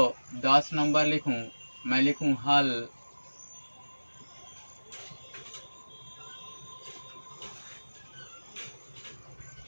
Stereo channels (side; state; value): both; inverted; correlation -1.00